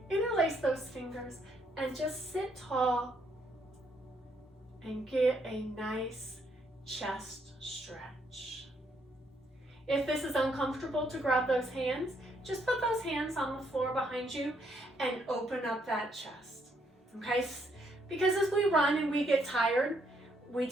interlace those fingers and just sit tall and get a nice chest stretch. If this is uncomfortable to grab those hands, just put those hands on the floor behind you and open up that chest, okay? Because as we run and we get tired, we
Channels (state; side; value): normal; both; correlation 0.72